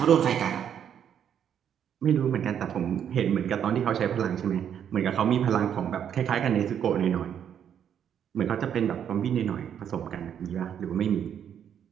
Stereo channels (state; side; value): quieter; left; 8.9 dB